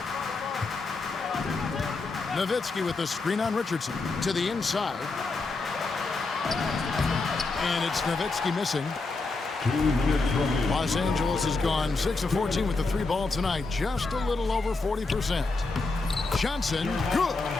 Nowitzki with the screen on Richardson to the inside. And it's Nowitzki missing. 2 minutes remaining. Los Angeles has gone 6 of 14 with the 3 ball tonight. Just a little over 40%. Johnson, good.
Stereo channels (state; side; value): quieter; right; 3.7 dB